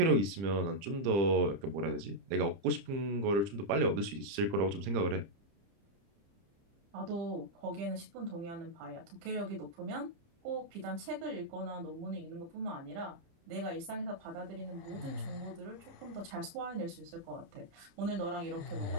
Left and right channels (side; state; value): left; late; 30 ms